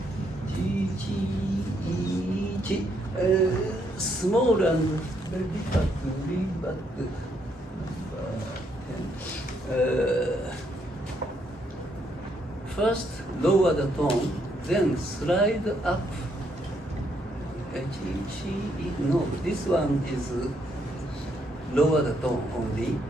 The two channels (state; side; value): normal; both; correlation 0.73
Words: Chi, chi, I, chi. Small and very difficult to read, but first lower the tone, then slide up. No, this one is lower the tone only,